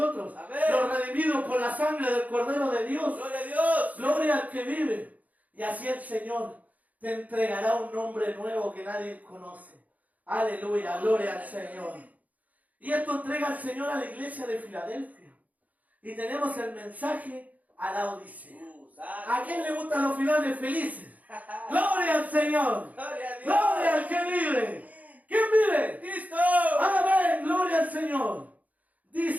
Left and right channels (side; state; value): left; late; 0.076 ms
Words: Amén. los redimidos por la sangre del Cordero de Dios. Gloria a Dios. Gloria al que vive. Y así el Señor te entregará un nombre nuevo que nadie conoce. Aleluya, gloria al Señor. Y esto entrega el Señor a la iglesia de Filadelfia. Y tenemos el mensaje a la Odisea. ¿A quién le gustan los finales felices? Gloria al Señor. Gloria a Dios. Gloria al que vive. ¿Quién vive? Cristo. Amén, gloria al Señor.